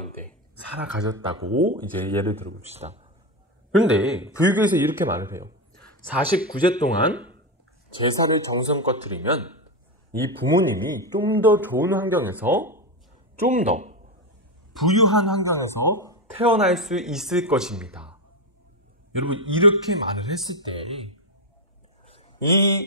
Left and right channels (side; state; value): both; normal; correlation 0.12